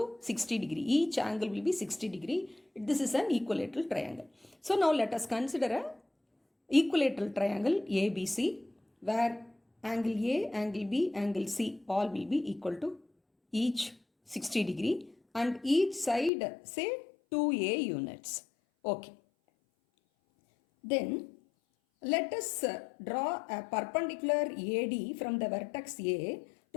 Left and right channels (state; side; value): drops out; right; at 16.3 s